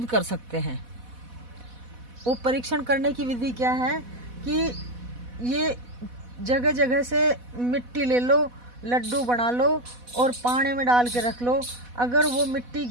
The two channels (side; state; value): left; late; 4.1 ms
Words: कर सकते हैं। वो परीक्षण करने की विधि क्या है कि ये जगह जगह से मिट्टी ले लो, लड्डू बना लो और पानी में डाल के रख लो। अगर वो मिट्टी